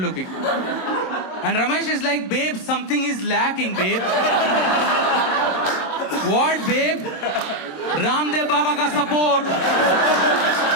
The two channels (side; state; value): right; late; 27 ms